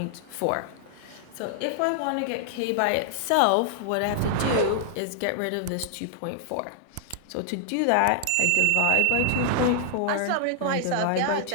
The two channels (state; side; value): different; both; correlation 0.00